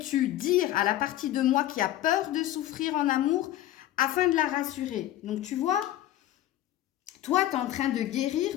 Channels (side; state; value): right; quieter; 13.5 dB